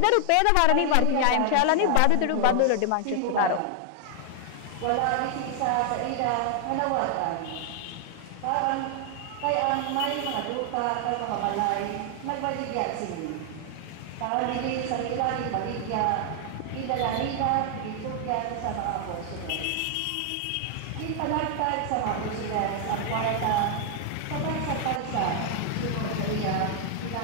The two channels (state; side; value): different; both; correlation 0.00